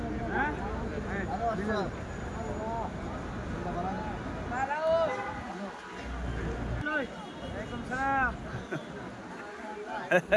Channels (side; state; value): both; identical; correlation 1.00